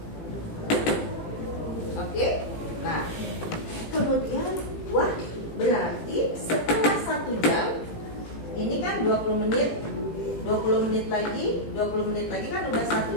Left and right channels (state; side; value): late; right; 18 ms